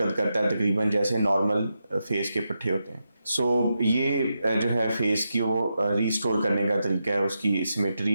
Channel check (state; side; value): inverted; both; correlation -0.87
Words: करता है तकरीबन जैसे नॉर्मल फेस के पट्टे होते हैं। सो ये जो है फेस की वो रीस्टोर करने का तरीका है, उसकी